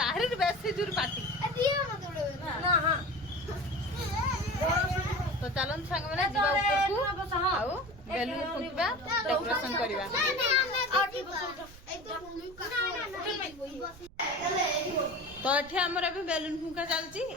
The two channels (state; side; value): noise; right; rumble, 20 dB below the sound